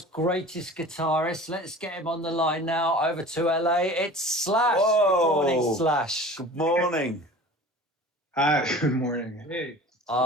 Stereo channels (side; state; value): both; normal; correlation 0.41